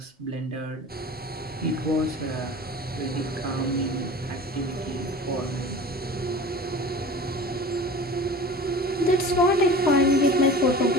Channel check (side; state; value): both; normal; correlation 0.38